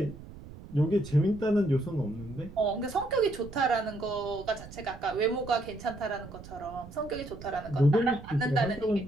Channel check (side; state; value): right; noise; rumble, 15 dB below the sound